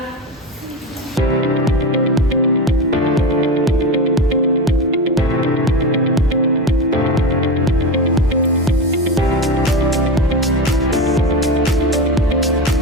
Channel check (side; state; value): both; normal; correlation 0.22